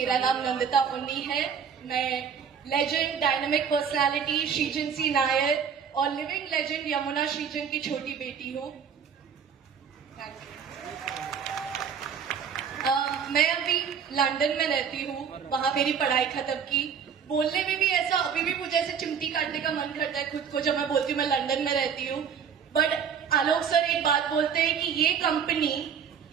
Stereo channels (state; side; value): quieter; left; 7.2 dB